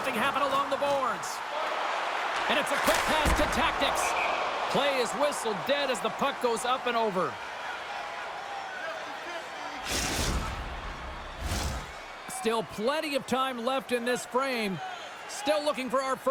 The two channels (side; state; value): both; identical; correlation 1.00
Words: happen along the boards. And it's a quick pass to Tactics. Play is whistled dead as the puck goes up and over. Still plenty of time left in this frame. Still looking for our